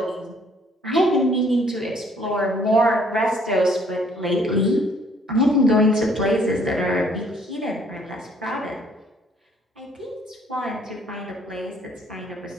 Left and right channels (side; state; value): both; normal; correlation 0.62